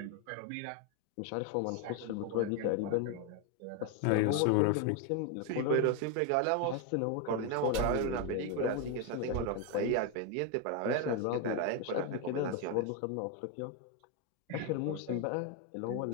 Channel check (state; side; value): different; both; correlation 0.01